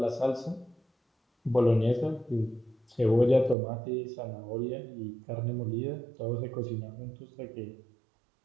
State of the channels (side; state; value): left; drops out; at 3.6 s